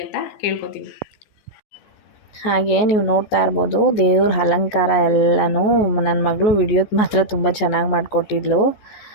ಅಂತ ಕೇಳ್ಕೊತೀನಿ. ಹಾಗೆ ನೀವು ನೋಡ್ತಾ ಇರ್ಬೋದು ದೇವ್ರ ಅಲಂಕಾರ ಎಲ್ಲನೂ ನನ್ನ ಮಗಳು ವಿಡಿಯೋದು ಮಾತ್ರ ತುಂಬ ಚೆನ್ನಾಗಿ ಮಾಡಿಕೊಟ್ಟಿದ್ಲು.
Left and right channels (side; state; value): right; late; 14 ms